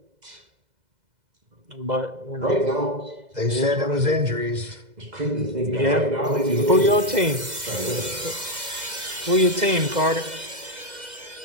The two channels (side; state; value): left; late; 2.0 ms